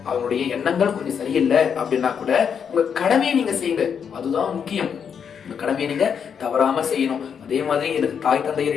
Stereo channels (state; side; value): quieter; right; 7.2 dB